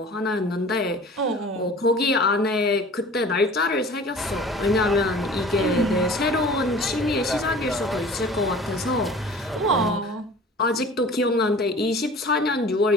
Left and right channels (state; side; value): normal; both; correlation 0.44